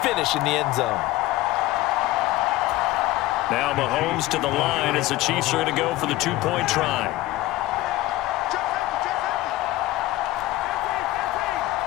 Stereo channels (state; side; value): quieter; right; 17.1 dB